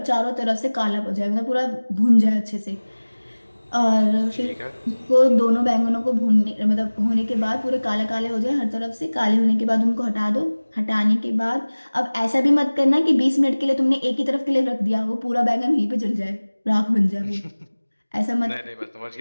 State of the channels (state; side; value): inverted; both; correlation -1.00